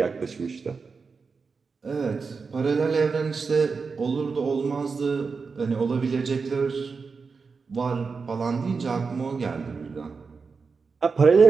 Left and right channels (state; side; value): quieter; left; 4.9 dB